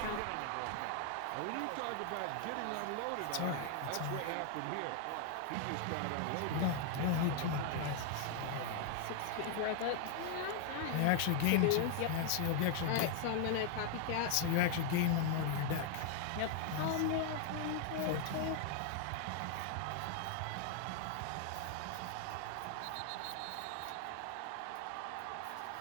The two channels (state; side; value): different; both; correlation 0.00